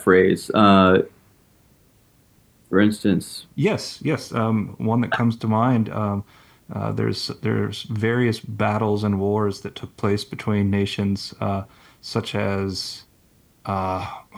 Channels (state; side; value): identical; both; correlation 1.00